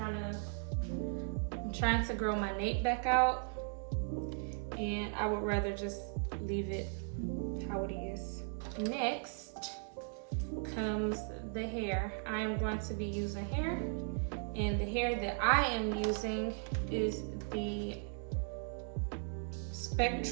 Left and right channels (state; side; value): silent; left; 53 dB below the other